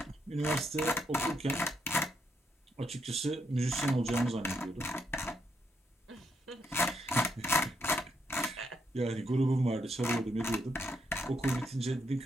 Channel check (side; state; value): both; normal; correlation 0.78